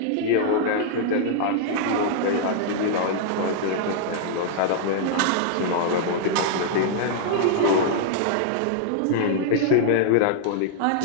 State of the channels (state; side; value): different; both; correlation -0.01